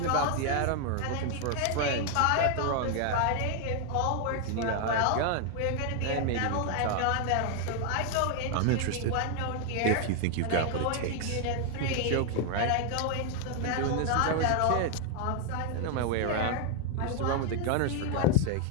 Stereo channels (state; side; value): different; both; correlation 0.00